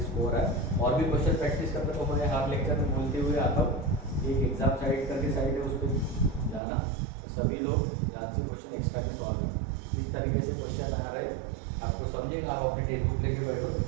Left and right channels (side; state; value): left; drops out; at 6.6 s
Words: स्कोर है। और भी क्वेश्चन प्रैक्टिस करते तो मैं हर लेक्चर में बोलते हुए आता हूँ, एक एग्जाम साइड करके साइड है उस पर जाना, तो सभी लोग याद से क्वेश्चन एक्स्ट्रा के सॉल्व करना। इस तरीके से क्वेश्चन आ रहे आपको समझेगा, आप अपनी टेक्स्ट बुक लेके बैठो तो